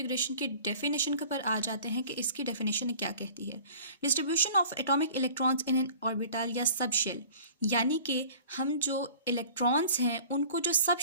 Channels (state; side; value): inverted; both; correlation -0.46